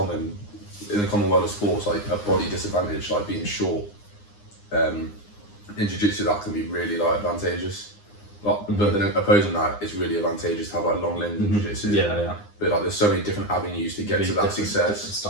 the common world of sports, like a body disadvantage, like being short, in jiu-jitsu that can be really like advantageous. Like, but then opposing that, it's really advantageous to have like long limbs in jiu-jitsu. Yeah. But like there's so many different avenues to get to that success. Different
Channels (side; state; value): right; late; 9.7 ms